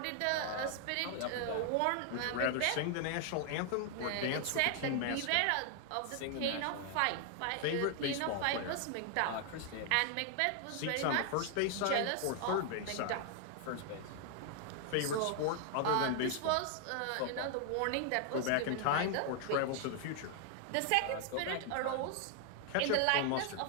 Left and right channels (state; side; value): different; both; correlation 0.00